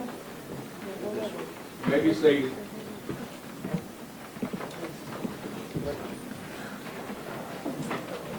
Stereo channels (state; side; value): identical; both; correlation 1.00